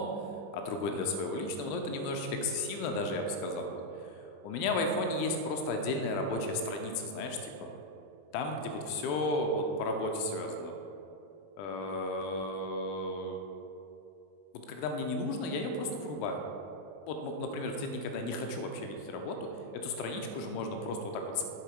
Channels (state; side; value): late; right; 20 ms